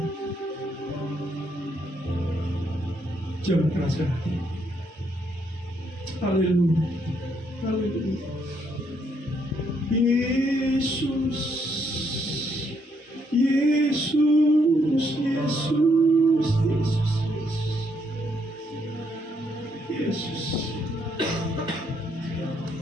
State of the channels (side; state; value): both; normal; correlation 0.73